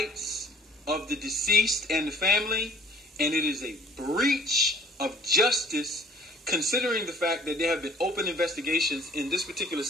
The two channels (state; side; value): normal; both; correlation 0.53